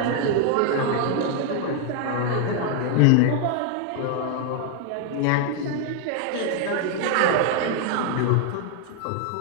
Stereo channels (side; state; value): both; different; correlation 0.00